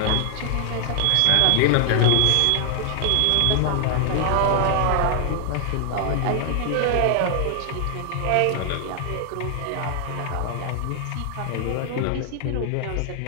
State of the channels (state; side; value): different; both; correlation 0.00